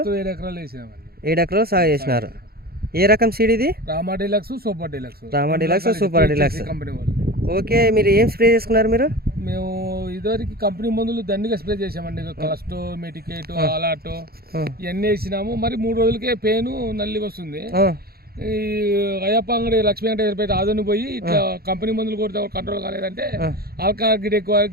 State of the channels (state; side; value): late; left; 0.45 ms